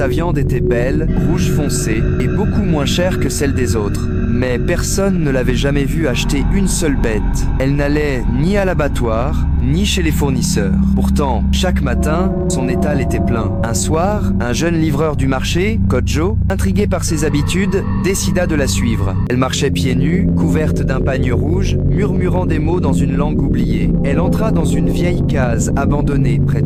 viande était belle, rouge foncé et beaucoup moins chère que celle des autres. Mais personne ne l'avait jamais vue acheter une seule bête. Elle n'allait ni à l'abattoir, ni chez les fournisseurs. Pourtant, chaque matin, son étal était plein. Un soir, un jeune livreur du marché, Kodjo, intrigué par ses habitudes, décida de la suivre. Elle marchait pieds nus, couverte d'un pagne rouge, murmurant des mots dans une langue oubliée. Elle entra dans une vieille case abandonnée près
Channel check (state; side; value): identical; both; correlation 1.00